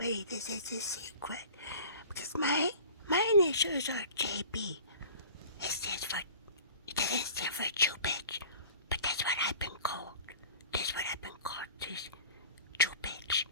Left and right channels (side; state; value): both; inverted; correlation -0.43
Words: this is a secret because my initials are JB. It doesn't stand for Jew bitch, but that's what I've been called. That's what I've been called, this Jew bitch.